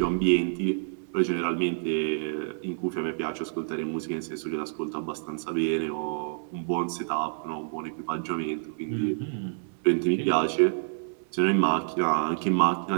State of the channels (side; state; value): left; silent; digital silence